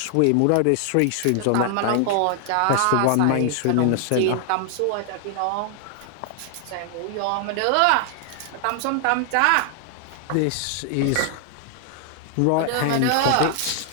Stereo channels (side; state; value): both; different; correlation 0.00